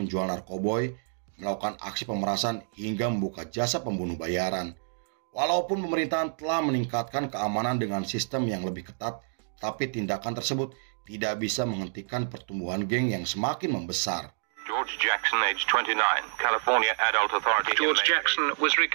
narkoboy, melakukan aksi pemerasan, hingga membuka jasa pembunuh bayaran. Walaupun pemerintahan telah meningkatkan keamanan dengan sistem yang lebih ketat, tapi tindakan tersebut tidak bisa menghentikan pertumbuhan geng yang semakin membesar. George Jackson, age 29, California Adult Authority. George Jackson was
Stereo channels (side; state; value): left; silent; digital silence